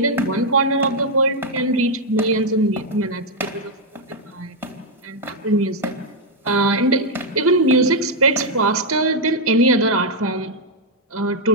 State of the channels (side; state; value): both; normal; correlation -0.01